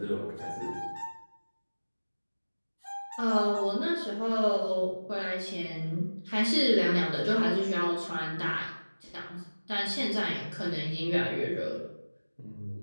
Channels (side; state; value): both; inverted; correlation -1.00